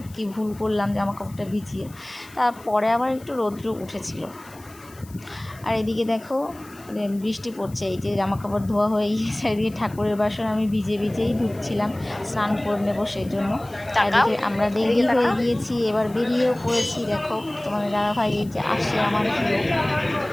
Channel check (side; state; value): left; noise; hiss, 23 dB below the sound